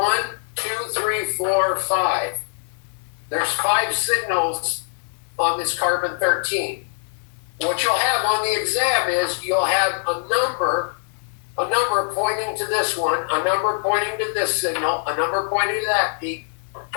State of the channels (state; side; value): silent; right; digital silence